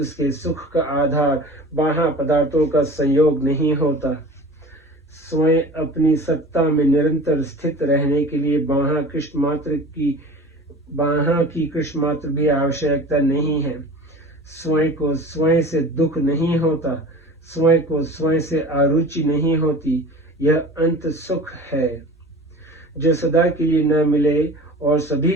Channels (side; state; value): both; normal; correlation 0.38